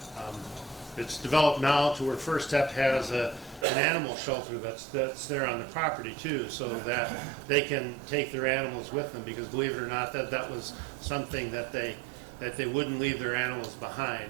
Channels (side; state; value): left; drops out; at 3.7 s